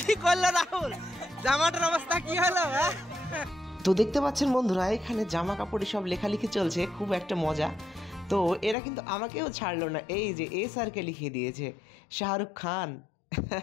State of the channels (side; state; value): right; drops out; at 8.8 s